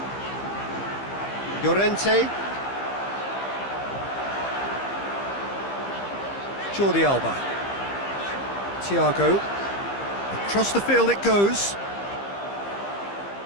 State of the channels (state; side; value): late; right; 15 ms